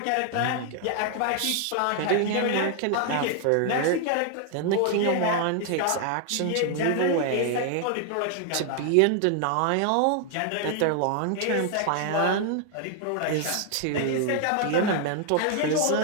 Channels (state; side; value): different; both; correlation 0.00